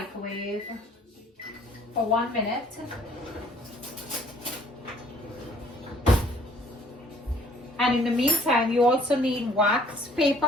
for 1 minute. And in the meantime, you also need wax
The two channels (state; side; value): normal; both; correlation 0.58